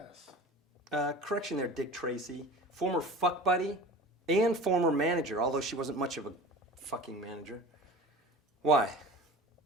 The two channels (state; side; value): normal; both; correlation 0.38